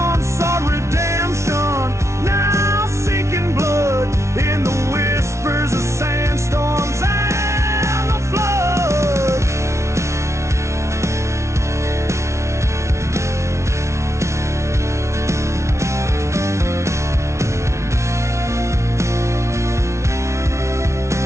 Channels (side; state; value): left; late; 0.13 ms